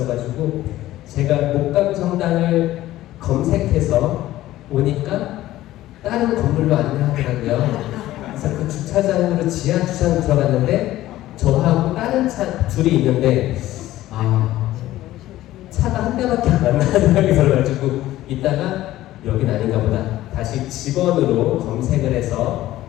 제가 목감 성당을 검색해서 오니까 다른 건물로 안내하더라고요. 그래서 그 주차장으로 지하 주차장 들어갔는데 저하고 다른 차 둘이 있는데 차가 한 대밖에 안 나는 생각이 들어가지고 이따가 여긴 아닌가 보다 다시 직원으로 검색을 해서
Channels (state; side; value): quieter; right; 15.1 dB